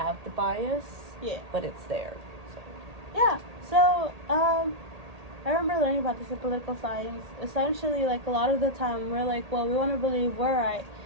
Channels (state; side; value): late; left; 1.8 ms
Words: the bias, but it's there. So I remember learning about this in political science. Essentially, like, a lot of the time we're like, well, we want to believe we're right,